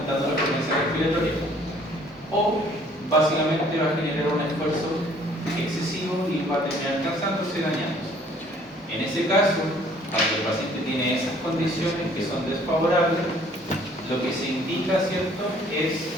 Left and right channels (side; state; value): both; normal; correlation 0.58